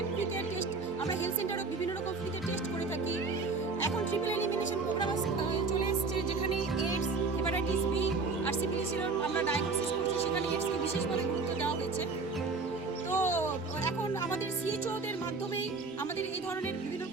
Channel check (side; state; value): left; quieter; 4.1 dB